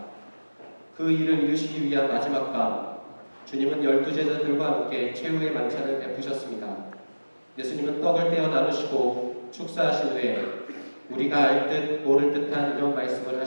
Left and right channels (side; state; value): both; inverted; correlation -1.00